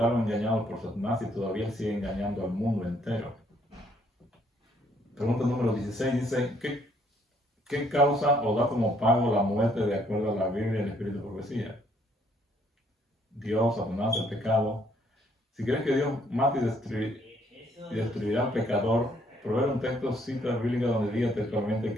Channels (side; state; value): both; normal; correlation 0.67